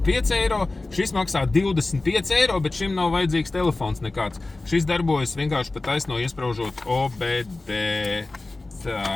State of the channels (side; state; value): right; quieter; 3.2 dB